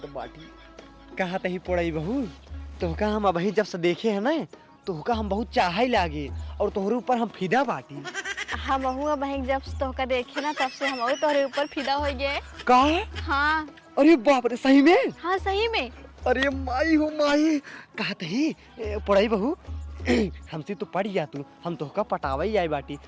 बाटी। कहा तही पड़ई बहू तोहका हम अभी जब से देखे है ना तोहका हम बहुत चाह ही लागे और तोहरे ऊपर हम फिदा बाटी। हम बहन जब तोहका देखे ना तब से हम तोहरे ऊपर फिदा हो गए। का हाँ अरे बाप रे सही में। हाँ सही में। अरे माई हो माई कहा तही पढ़ाई बहू हमसे तो पढ़ जा तू हम तोहका पटावा ही आई बाटी।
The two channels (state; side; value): identical; both; correlation 1.00